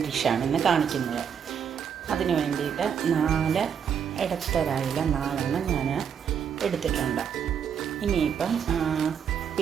ഡിഷാണ് ഇന്ന് കാണിക്കുന്നത്. അതിന് വേണ്ടിയിട്ട് 4 ഇടത്തരായില 4 ഞാൻ എടുത്തിട്ടുണ്ട്. ഇനിയിപ്പം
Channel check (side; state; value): left; quieter; 7.7 dB